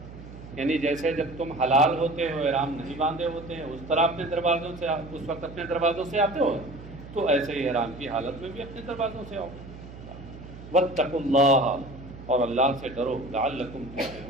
یعنی جیسے جب تم حلال ہوتے ہو، احرام نہیں باندھے ہوتے ہیں، اس طرح اپنے دروازوں سے اس وقت اپنے دروازوں سے آتے ہو، تو ایسے ہی احرام کی حالت میں بھی اپنے دروازوں سے آؤ۔ واتقوا اللہ، اور اللہ سے ڈرو، لعلکم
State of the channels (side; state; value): right; noise; hum, 15 dB below the sound